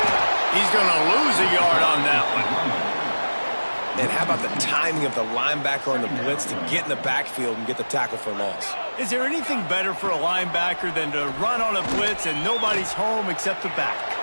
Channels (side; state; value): both; inverted; correlation -1.00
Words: He's going to lose a yard on that one. And how about the timing of the linebacker on the blitz to get in the backfield and get the tackle for loss? Is there anything better for a linebacker than to run on a blitz and nobody's home except the back?